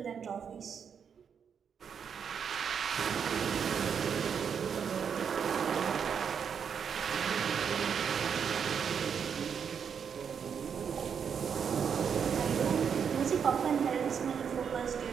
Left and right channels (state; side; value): quieter; left; 7.1 dB